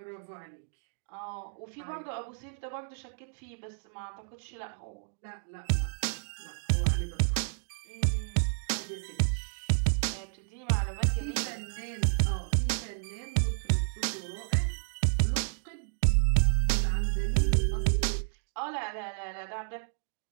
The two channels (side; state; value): left; silent; digital silence